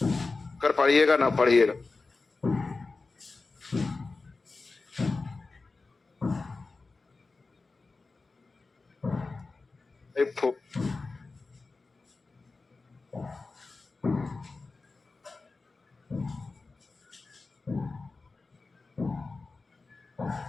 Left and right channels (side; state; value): right; quieter; 3.8 dB